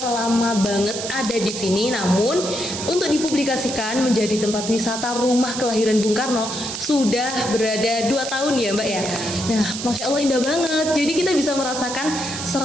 lama banget ada di sini. Namun untuk dipublikasikan menjadi tempat wisata rumah kelahiran Bung Karno sudah berada 2 tahun ya Mbak ya. Nah, Masya Allah indah banget. Jadi kita bisa merasakan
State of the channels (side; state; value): right; noise; hiss, 6 dB below the sound